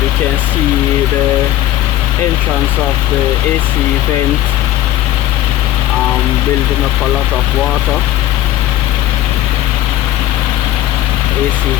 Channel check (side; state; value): right; quieter; 14.1 dB